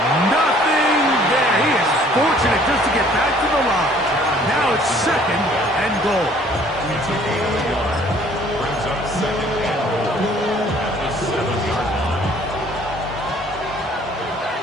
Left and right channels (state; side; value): normal; both; correlation 0.57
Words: Nothing there. He is fortunate just to get back to the line. Now it's 2nd and goal. Brings up 2nd and goal at the 7-yard line.